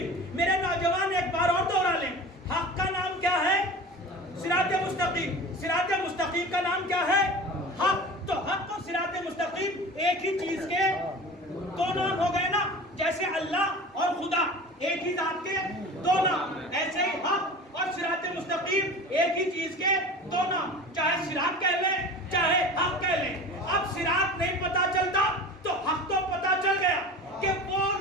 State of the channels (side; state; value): both; normal; correlation 0.36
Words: میرے نوجوان ایک بار اور دوہرا لیں, حق کا نام کیا ہے, صراط مستقیم. صراط مستقیم کا نام کیا ہے, حق. تو حق اور صراط مستقیم ایک ہی چیز کے دو نام ہو گئے نا. جیسے اللہ اور خدا ایک ہی ذات کے دو نام, ایسے ہی حق اور صراط مستقیم ایک ہی چیز کے دو نام. چاہے صراط کہہ لیں چاہے حق کہہ لیں. اب صراط نہیں پتا چلتا تو حق تو پتا چل گیا کہ وہ